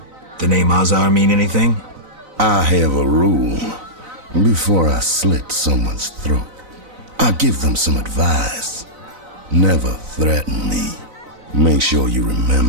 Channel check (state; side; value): late; left; 4.0 ms